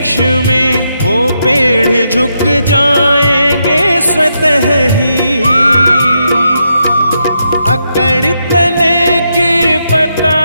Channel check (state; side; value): inverted; both; correlation -0.82